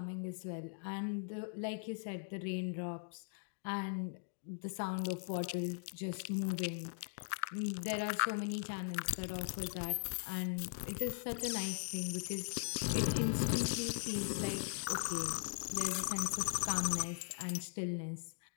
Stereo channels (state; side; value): silent; right; digital silence